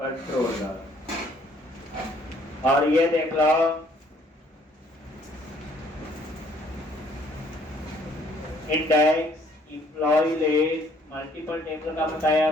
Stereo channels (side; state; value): both; normal; correlation 0.63